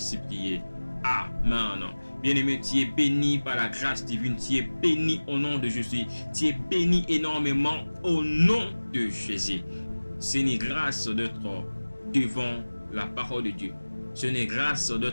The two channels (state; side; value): inverted; both; correlation -1.00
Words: prié. Amen. Bien-aimé, tu es béni par la grâce divine. Tu es béni au nom de Jésus. Tu es béni énormément au nom de Jésus. C'est une grâce d'être devant la parole de Dieu. C'est une grâce